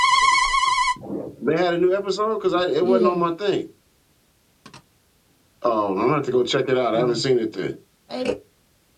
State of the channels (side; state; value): both; identical; correlation 1.00